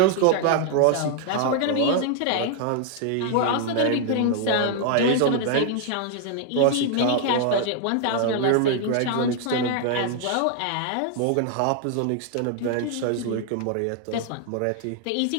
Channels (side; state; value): both; different; correlation 0.00